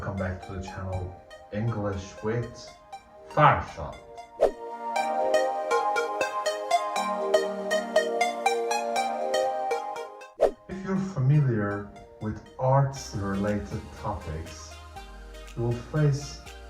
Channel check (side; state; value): both; identical; correlation 1.00